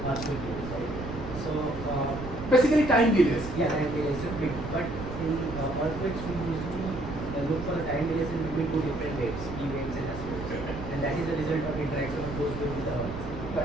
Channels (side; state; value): right; noise; rumble, 9 dB below the sound